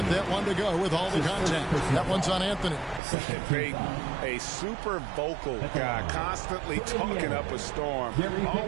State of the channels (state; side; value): drops out; left; at 3.0 s